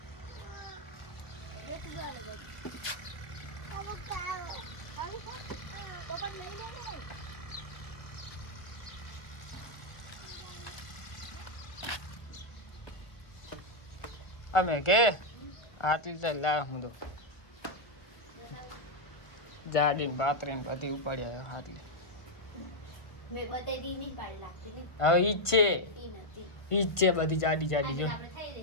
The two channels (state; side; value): late; right; 1.1 ms